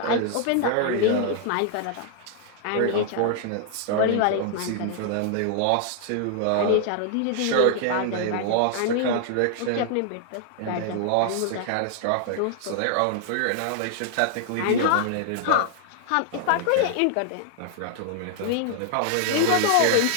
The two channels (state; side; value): different; both; correlation 0.00